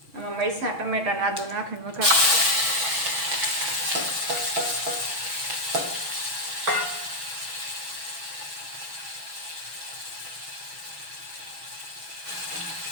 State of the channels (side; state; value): left; late; 6.2 ms